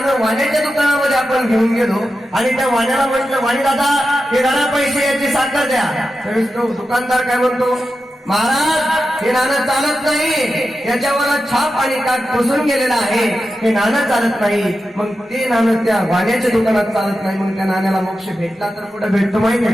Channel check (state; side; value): normal; both; correlation 0.91